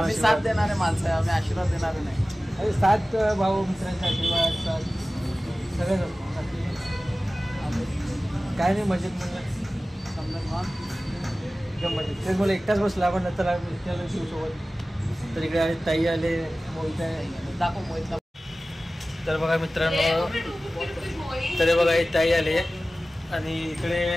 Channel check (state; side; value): normal; both; correlation 0.96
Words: साथ देणारे माणसं आहे, आम्ही आशीर्वाद देणारे नाही। अरे साथ भाऊ मित्रांचा आशीर्वाद साथ सगळ्याच असतो, काय नाही मजेत म्हणलं समजा एकदम मजेत। तेच मला एकटाच बसला आपण नंतर शिवसोबत, तर इकडे आले ताई आले मोहित आहे दाखव मोहितला। तर बघा मित्रांनो, तर बघा ताई आले आणि इकडे